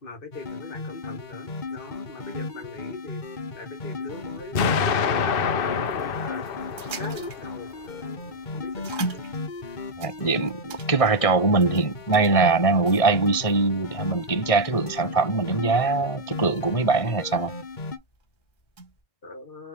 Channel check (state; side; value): late; right; 1.6 ms